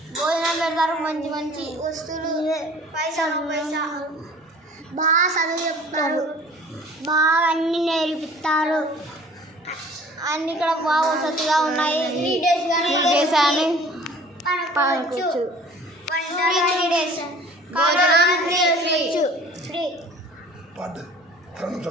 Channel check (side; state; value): both; normal; correlation 0.48